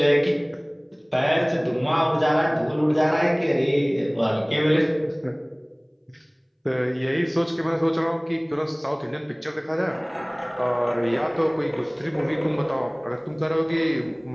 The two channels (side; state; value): both; identical; correlation 1.00